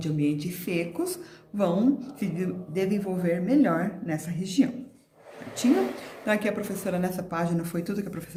ambientes secos vão se desenvolver melhor nessa região. Certinho? Então, aqui a professora, nessa página, foi tudo que a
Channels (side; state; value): both; identical; correlation 1.00